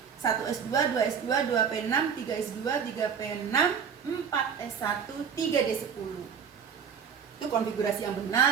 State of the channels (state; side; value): quieter; left; 7.0 dB